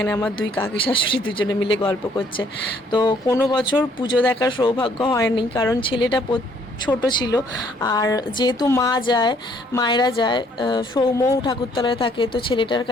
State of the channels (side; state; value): both; normal; correlation 0.64